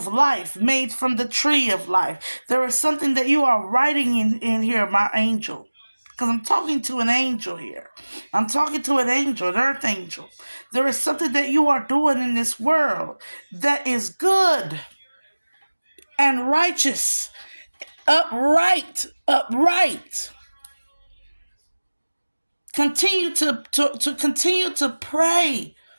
life made from the tree of life. There is something that you are writing in here, my angel. Because I'm talking to an angel here. I'm talking to an angel, an earth angel. There is something that you are doing in this world that is good and righteous, upright. Continue to continue to pray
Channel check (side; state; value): both; inverted; correlation -1.00